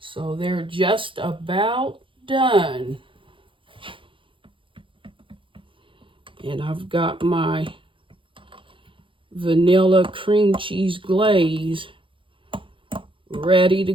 they're just about done. And I've got my vanilla cream cheese glaze ready to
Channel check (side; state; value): left; late; 0.25 ms